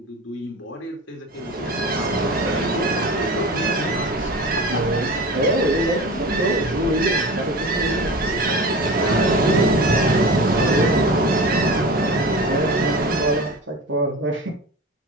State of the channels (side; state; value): both; normal; correlation 0.33